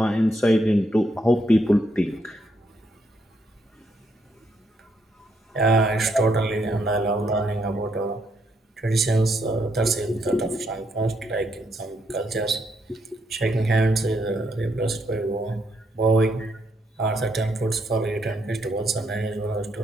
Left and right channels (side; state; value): both; normal; correlation 0.76